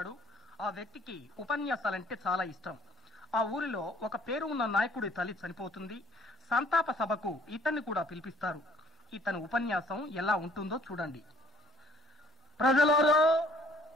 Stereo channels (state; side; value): normal; both; correlation 0.58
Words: ఆ వ్యక్తికి ఉపన్యాసాలంటే చాలా ఇష్టం. ఆ ఊరిలో ఒక పేరు ఉన్న నాయకుడి తల్లి చనిపోతుంది. సంతాప సభకు ఇతన్ని కూడా పిలిపిస్తారు. ఇతని ఉపన్యాసం ఎలా ఉంటుందో చూడండి. ప్రజలారా,